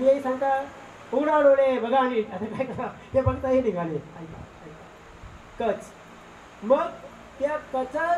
यही सांगता उघडा डोळे बघा आणि आता काय करा ते बघता हे निघाले कच. मग त्या कचाला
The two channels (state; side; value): identical; both; correlation 1.00